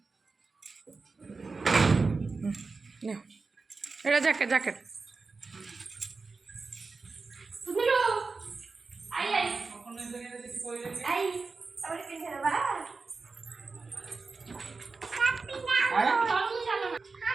एटा जैकेट जैकेट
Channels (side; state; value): left; quieter; 4.2 dB